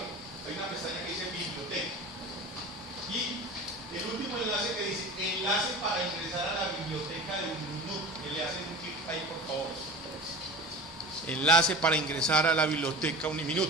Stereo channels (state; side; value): normal; both; correlation 0.34